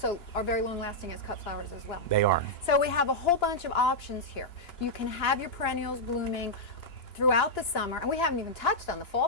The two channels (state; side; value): late; right; 2.9 ms